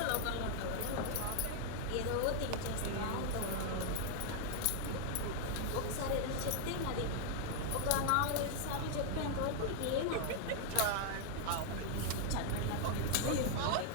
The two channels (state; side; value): different; both; correlation 0.00